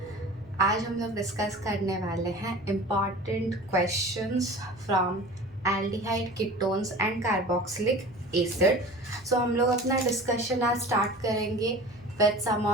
आज हम लोग discuss करने वाले हैं important questions from aldehyde ketones and carboxylic acid. So हम लोग अपना डिस्कशन आज स्टार्ट करेंगे with some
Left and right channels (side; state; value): right; noise; hum, 26 dB below the sound